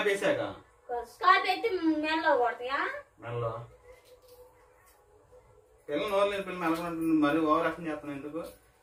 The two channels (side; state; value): both; identical; correlation 1.00